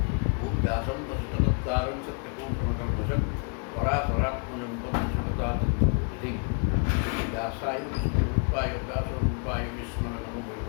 ॐ व्यासं वसिष्ठदत्तारं सत्यपूर्णमकल्मषं पराशरात्मजं पद्मशुभतातिं व्यासाय विष्णुरूपाय व्यासरूपाय विष्णवे नमो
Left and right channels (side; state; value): right; quieter; 39.7 dB